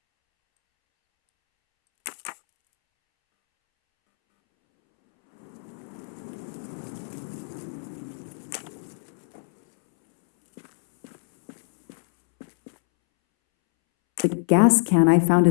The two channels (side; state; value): right; silent; 62 dB below the other